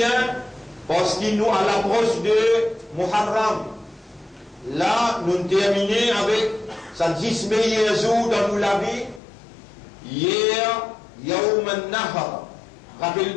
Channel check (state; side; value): drops out; right; at 9.2 s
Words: parce qu'il nous à l'approche de Muharram. Là, nous terminons avec sa 10 meilleurs jours dans la vie. Hier, Yawm al-Nahar. Rappelez